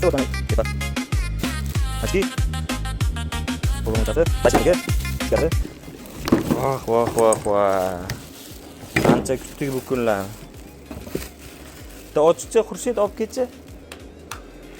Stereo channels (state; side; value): identical; both; correlation 1.00